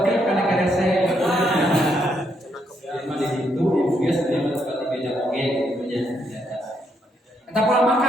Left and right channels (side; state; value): both; normal; correlation 0.76